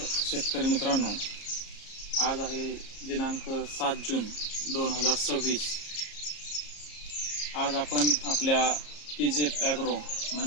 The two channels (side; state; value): right; late; 34 ms